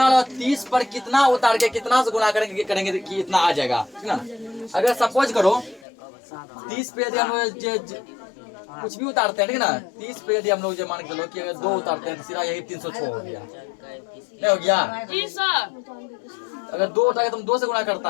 लगाओ 30 पर कितना उतार के कितना से गुणा करेंगे कि इतना आ जाएगा, ठीक ना। अगर सपोज करो 30 पे यदि हम कुछ भी उतारते हैं, ठीक ना। 30 पे यदि हम लोग जो मान के चलो कि अगर 2 उतारते हैं तो सीधा यही 306 हो गया, नहीं हो गया जी सर। अगर 2 उतार के तुम 2 से गुणा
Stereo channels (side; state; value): right; drops out; at 5.9 s